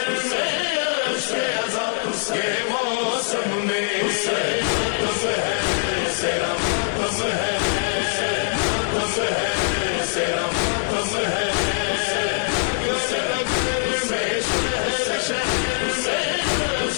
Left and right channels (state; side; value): silent; right; 64 dB below the other